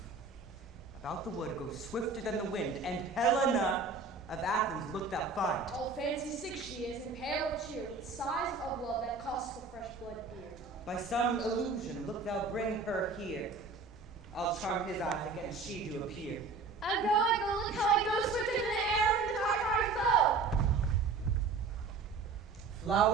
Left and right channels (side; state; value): left; quieter; 4.3 dB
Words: About the wood go swifter than the wind, and Helena of Athens look thou find. All fancy sick she is, and pale of cheer, with sighs of love that cost the fresh blood dear. By some illusion look thou bring her here. I'll charm his eyes against she do appear. I go, look how I go swifter than the arrow from the Tartar's bow.